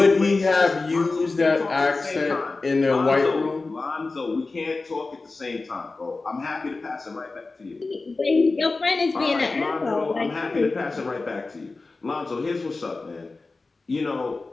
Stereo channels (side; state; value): right; quieter; 3.6 dB